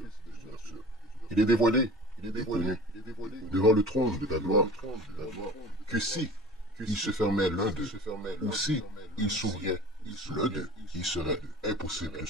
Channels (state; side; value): normal; both; correlation 0.37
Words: Il est dévoilé, il est connu, devant le trône de ta gloire, que si il se fermait l'un d'eux, ou si il s'ouvrait l'un d'eux, il serait impossible de